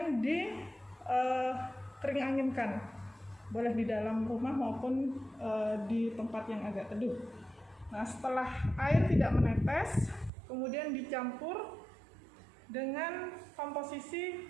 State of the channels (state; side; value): drops out; left; at 10.3 s